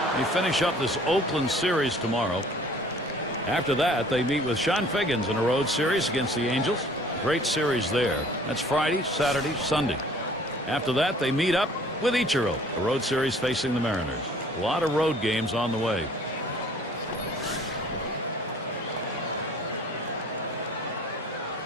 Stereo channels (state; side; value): normal; both; correlation 0.53